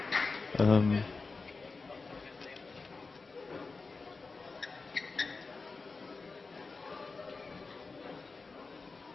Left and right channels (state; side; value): quieter; right; 4.1 dB